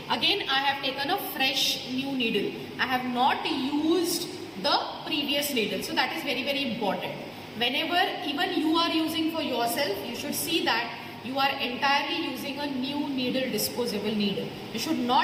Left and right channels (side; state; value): both; identical; correlation 1.00